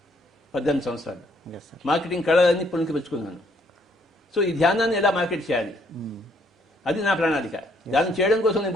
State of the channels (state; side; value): normal; both; correlation 0.68